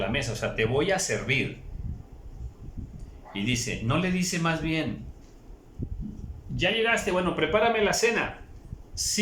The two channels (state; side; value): identical; both; correlation 1.00